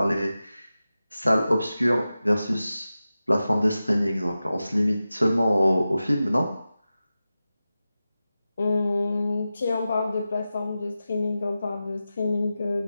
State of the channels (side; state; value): both; inverted; correlation -0.94